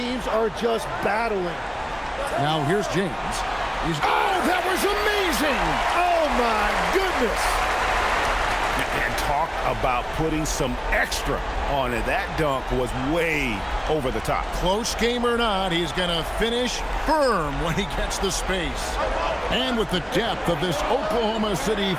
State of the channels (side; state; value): both; identical; correlation 1.00